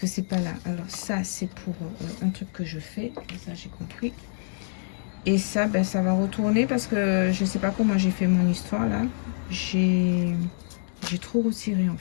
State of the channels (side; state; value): right; silent; digital silence